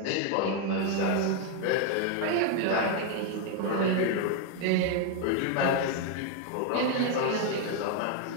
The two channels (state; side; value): different; both; correlation 0.01